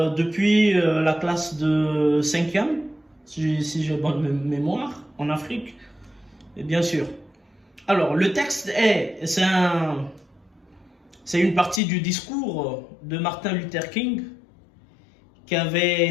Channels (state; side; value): drops out; right; at 11.8 s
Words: la classe de 5e, si j'ai bonne mémoire, en Afrique, et bien sûr. Alors, le texte c'est une partie du discours de Martin Luther King qui a